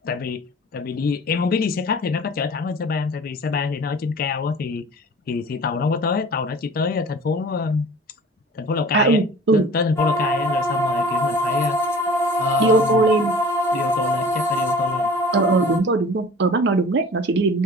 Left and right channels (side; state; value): both; normal; correlation 0.43